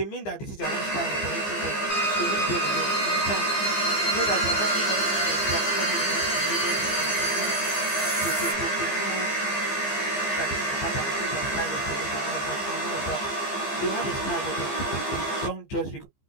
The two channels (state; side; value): late; right; 15 ms